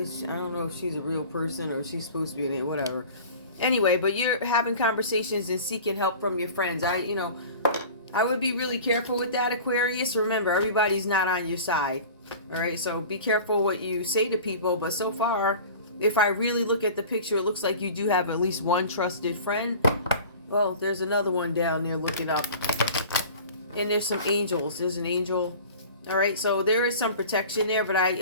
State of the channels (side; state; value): both; inverted; correlation -0.40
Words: know if she's a real person or if she's supposed to be in it, whatever. Anyway, but you're having conversations and seeking help from your friends. I would be really careful with that, Aquarius. Remember, everybody's not on your side. All right, so be careful what you say to people. But so far, if I really look at the picture, it looks like you do have at least one trusted friend. Well, there's another one down there looking up. And there's some angels. There's an angel. All right, so there is some protection there. But I,